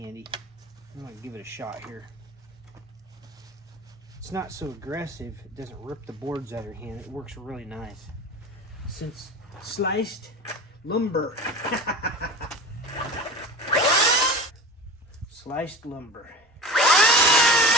I'm going to give it a shot here. It's not so aggressive. It doesn't rip the boards out of your hand. It works really nice. Since sliced lumber. Sliced lumber.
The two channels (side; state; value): both; normal; correlation 0.33